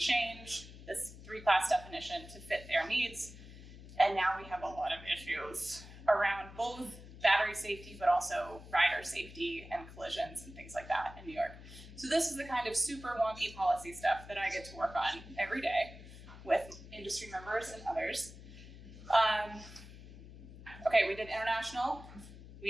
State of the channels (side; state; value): left; noise; hum, 16 dB below the sound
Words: this 3-class definition to fit their needs, and now we have a lot of issues around both battery safety, but also rider safety and collisions and things like that in New York. So this is the kind of super wonky policy stuff that I get to work on every day with industry members and others. Okay, we did international,